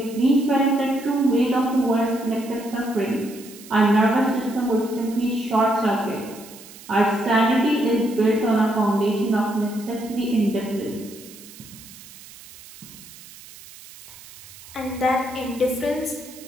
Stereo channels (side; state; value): right; noise; hiss, 19 dB below the sound